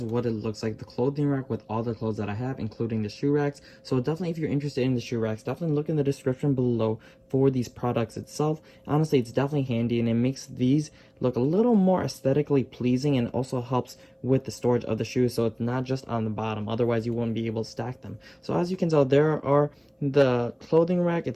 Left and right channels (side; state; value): both; identical; correlation 1.00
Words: what it looks like, the clothing rack with all the clothes that I have, including the shoe racks. So definitely, if you're interested in the shoe racks, definitely look in the description below for these products itself. Honestly, it's definitely handy, and it makes these look a little more aesthetically pleasing, and also helps with the storage of the shoes, so it's not just on the bottom. Otherwise, you won't be able to stack them. So as you can tell, there are the clothing rack